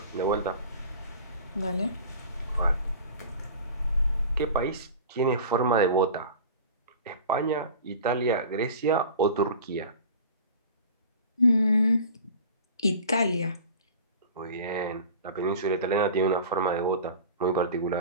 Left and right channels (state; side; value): inverted; both; correlation -0.39